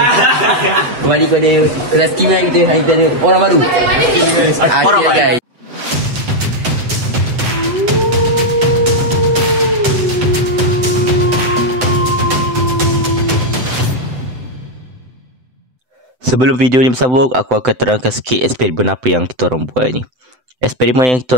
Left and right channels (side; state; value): left; late; 7.9 ms